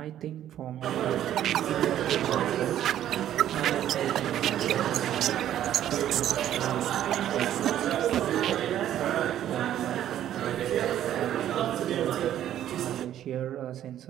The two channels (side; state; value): left; quieter; 11.5 dB